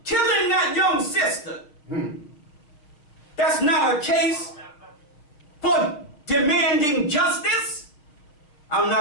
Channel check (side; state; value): right; late; 6.6 ms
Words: killing that young sister. That's not a case for demanding justice. I'm